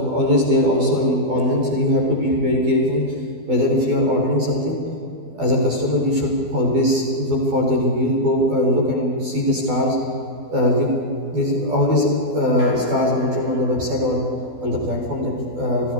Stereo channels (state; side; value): late; left; 12 ms